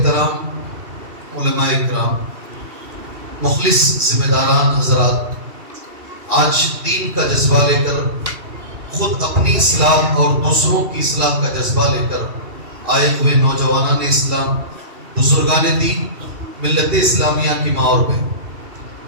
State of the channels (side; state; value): left; late; 2.7 ms